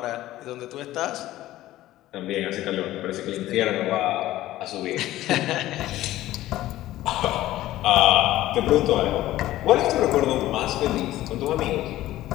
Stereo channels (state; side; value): quieter; right; 15.2 dB